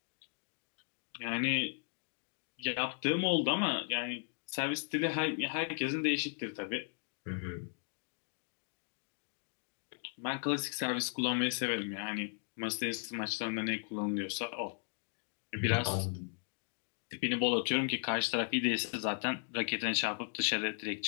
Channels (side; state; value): right; silent; 53 dB below the other